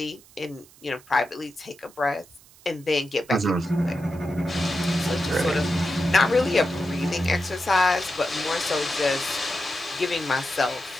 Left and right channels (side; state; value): right; noise; hiss, 25 dB below the sound